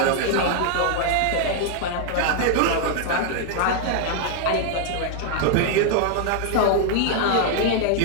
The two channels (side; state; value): both; different; correlation 0.00